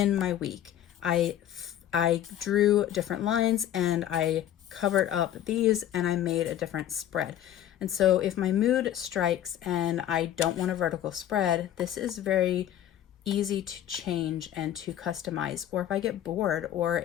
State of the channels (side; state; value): right; quieter; 11.4 dB